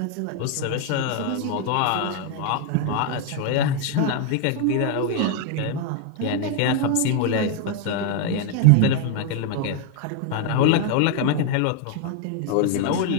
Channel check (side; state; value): both; different; correlation 0.01